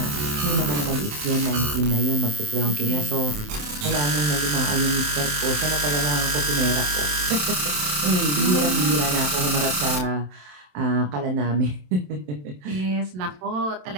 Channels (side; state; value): left; late; 27 ms